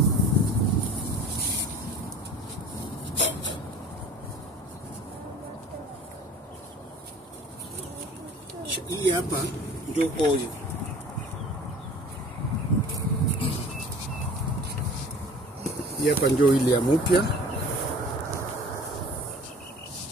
Hii hapa ndio oil. Hii hapa ndio ile ya mpya.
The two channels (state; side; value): normal; both; correlation 0.45